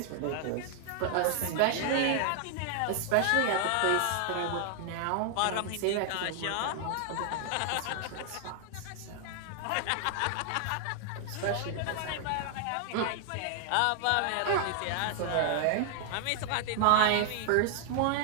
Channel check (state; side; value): different; both; correlation 0.00